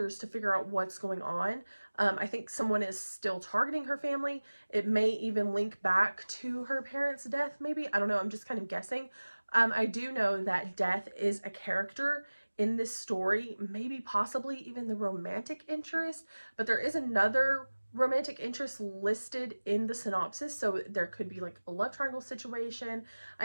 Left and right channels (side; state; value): both; inverted; correlation -1.00